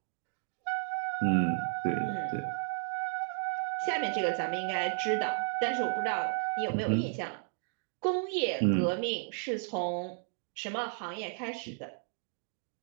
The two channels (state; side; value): silent; left; 55 dB below the other